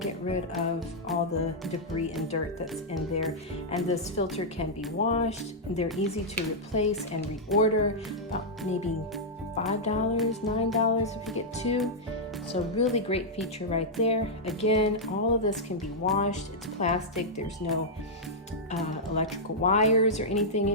get rid of all the debris and dirt that's in there. And this filter can be washed. They're easy to replace and reorder, about maybe $5, $9 if you get two. So really great feature right there. Again, all of this can be washed. It's plastic, there's no electrical wires or anything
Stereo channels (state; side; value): normal; both; correlation -0.07